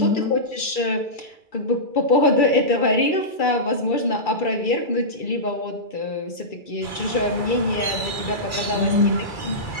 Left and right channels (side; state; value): right; late; 2.3 ms